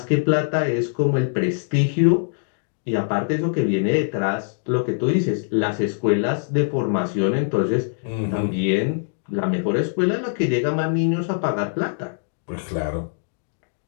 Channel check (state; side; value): silent; right; digital silence